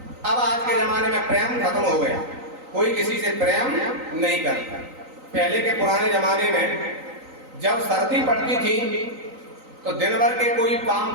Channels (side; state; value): left; late; 3.9 ms